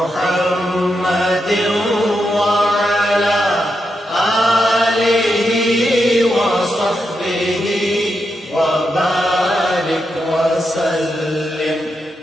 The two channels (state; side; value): normal; both; correlation 0.85